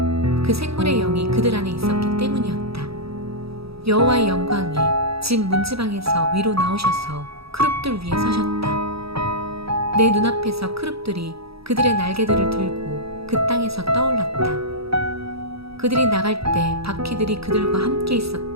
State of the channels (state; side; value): late; left; 0.77 ms